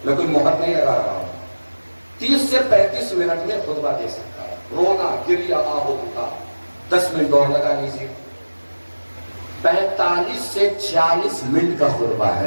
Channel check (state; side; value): inverted; both; correlation -1.00